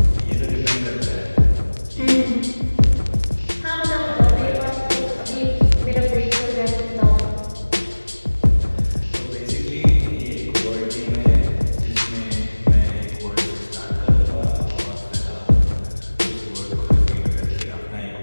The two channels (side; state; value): both; inverted; correlation -1.00